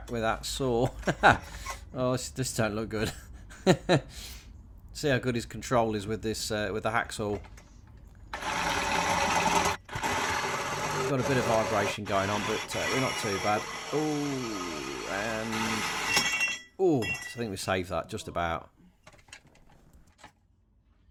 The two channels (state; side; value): identical; both; correlation 1.00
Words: with that saw. Oh, this don't look good. See how good his control is with this, with the hacksaw. Got a bit of vibration going on, but we're not too bad. Oh, and oh, I think we saved that just about.